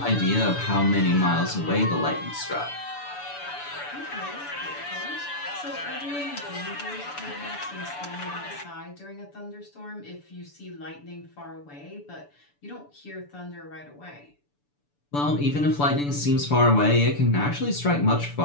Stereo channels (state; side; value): late; right; 6.9 ms